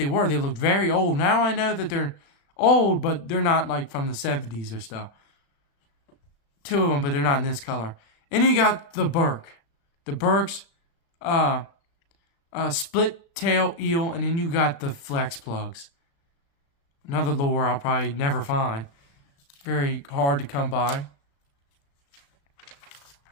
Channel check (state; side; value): late; right; 36 ms